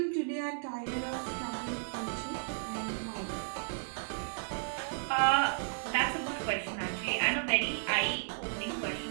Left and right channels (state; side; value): silent; left; digital silence